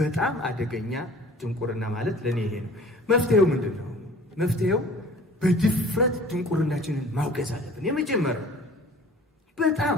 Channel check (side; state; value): both; normal; correlation 0.47